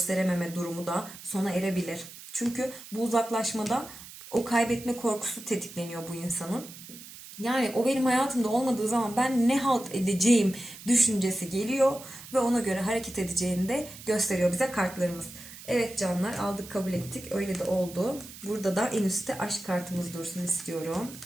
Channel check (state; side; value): noise; right; hiss, 16 dB below the sound